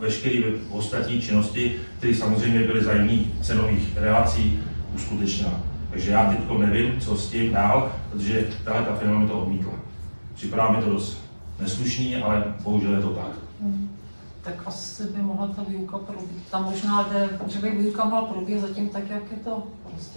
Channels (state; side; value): inverted; both; correlation -1.00